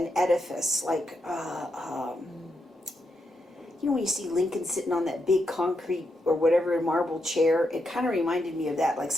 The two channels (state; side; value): normal; both; correlation 0.83